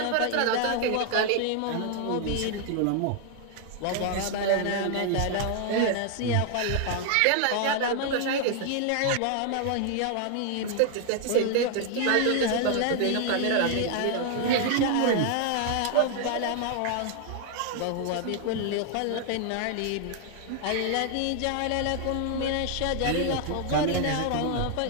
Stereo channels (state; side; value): different; both; correlation 0.00